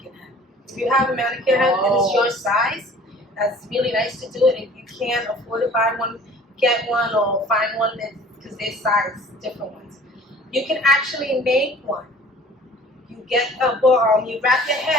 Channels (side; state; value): both; normal; correlation 0.49